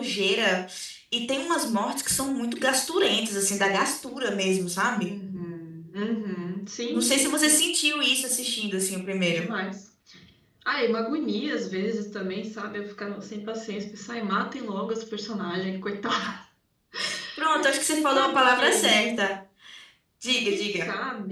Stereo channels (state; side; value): identical; both; correlation 1.00